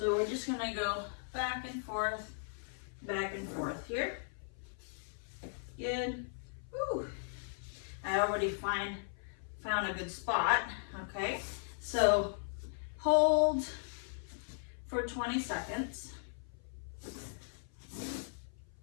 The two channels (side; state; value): right; silent; 53 dB below the other